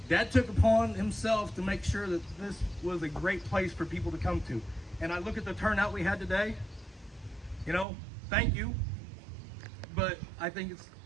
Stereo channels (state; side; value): drops out; left; at 7.9 s